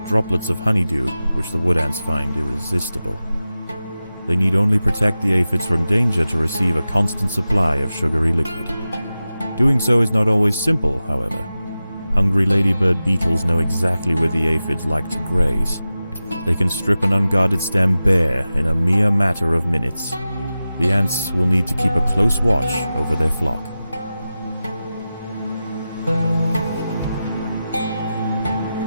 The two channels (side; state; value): both; inverted; correlation -0.94